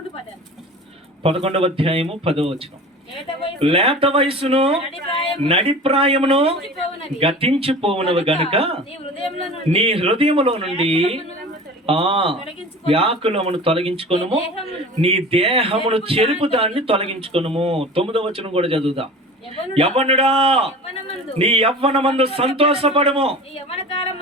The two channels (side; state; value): both; normal; correlation 0.37